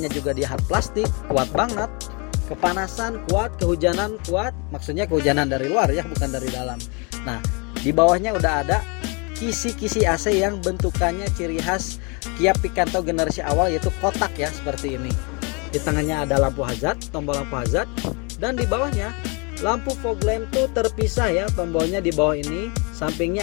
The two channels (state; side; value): quieter; right; 32.1 dB